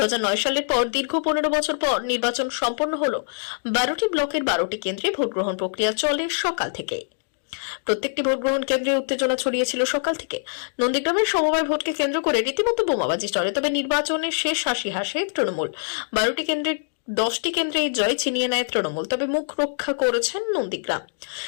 সালের পর দীর্ঘ 15 বছর পর নির্বাচন সম্পন্ন হলো। 12টি ব্লকের 12টি কেন্দ্রে ভোটগ্রহণ প্রক্রিয়া চলে সকাল থেকে। প্রত্যেকটি ভোটগ্রহণ কেন্দ্রে উত্তেজনা ছড়িয়েছিল সকাল থেকে। নন্দীগ্রামের সমবায় ভোটকে কেন্দ্র করে রীতিমতো বোমাবাজি চলে। তবে নির্বাচনের শেষ হাসি হাসে তৃণমূল। 12টি কেন্দ্রে 10টি কেন্দ্রে এই জয় ছিনিয়ে নেয় তৃণমূল, তবে মুখ রক্ষা করেছেন নন্দীগ্রাম।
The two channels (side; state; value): right; silent; digital silence